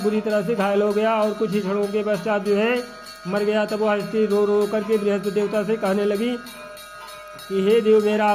बुरी तरह से घायल हो गया और कुछ ही क्षणों के पश्चात जो है मर गया। तब वह स्त्री रो रो करके बृहस्पति देवता से कहने लगी कि हे देव, मेरा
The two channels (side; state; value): both; identical; correlation 1.00